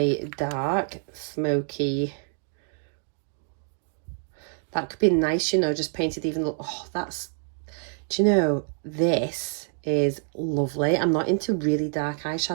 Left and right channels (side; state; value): left; silent; 56 dB below the other